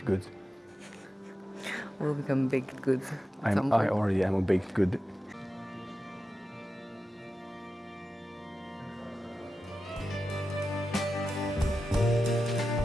goods. We'll become baked goods. at some I point. already am a baked good.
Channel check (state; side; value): normal; both; correlation 0.92